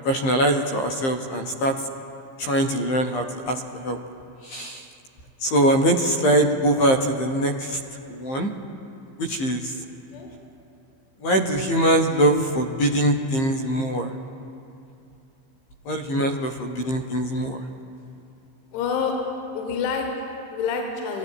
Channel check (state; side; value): late; right; 15 ms